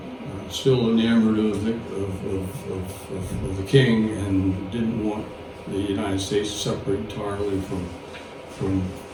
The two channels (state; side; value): identical; both; correlation 1.00